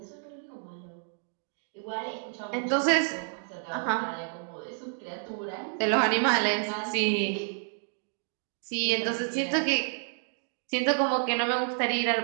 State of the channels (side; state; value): left; silent; 58 dB below the other